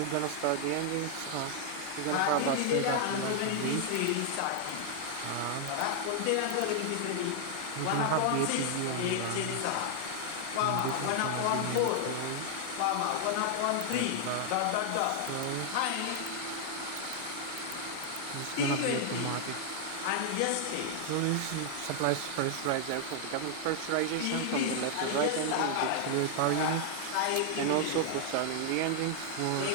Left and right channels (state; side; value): different; both; correlation 0.00